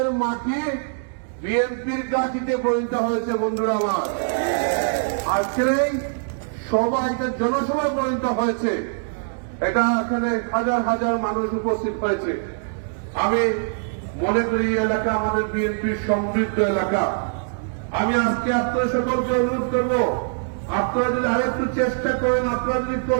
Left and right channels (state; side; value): silent; left; digital silence